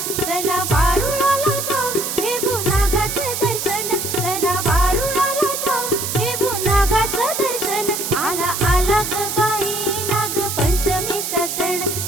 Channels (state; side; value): noise; right; hiss, 3 dB below the sound